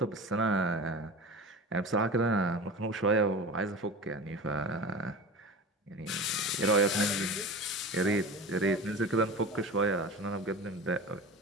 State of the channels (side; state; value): both; normal; correlation 0.32